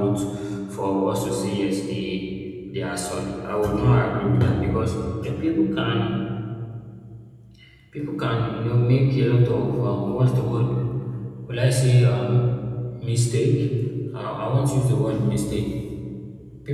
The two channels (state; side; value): identical; both; correlation 1.00